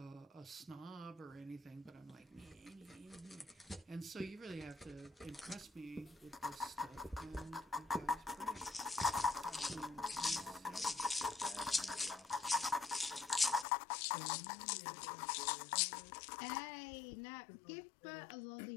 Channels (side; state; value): right; drops out; at 13.7 s